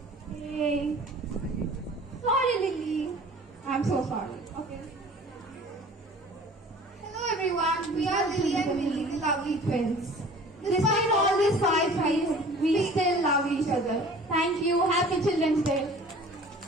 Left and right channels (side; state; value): both; normal; correlation 0.46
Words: Hey. Sorry, Lily. I'm so sorry. Okay. Hello, everyone. We are Lily and Millie, the lovely twins. Despite all these fights, we still love each other. Thank you. Happy Children's Day.